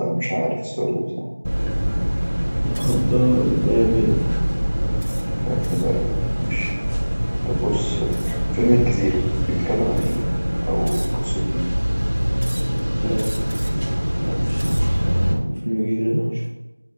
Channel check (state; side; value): inverted; both; correlation -1.00